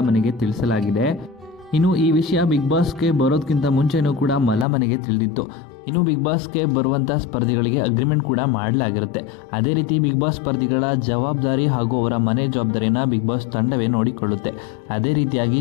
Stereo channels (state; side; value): drops out; right; at 4.7 s